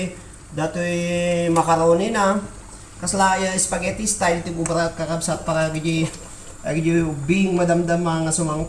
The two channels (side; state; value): both; identical; correlation 1.00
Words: macaroni na. Kasla spaghetti style ti bubarat kakapsat para gidi bing madamdam nga